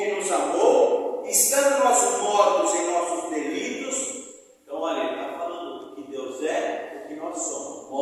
nos amou, estando nós mortos em nossos delitos. Então, olha, ele está falando do que Deus é, do que nós somos,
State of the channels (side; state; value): both; identical; correlation 1.00